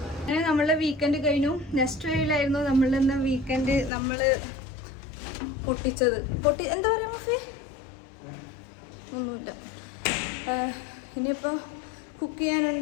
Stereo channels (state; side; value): drops out; right; at 3.9 s